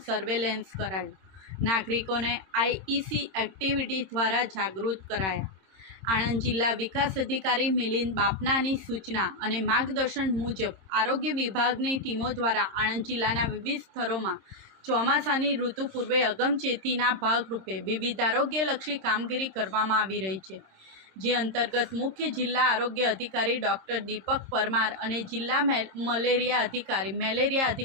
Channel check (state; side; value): late; left; 26 ms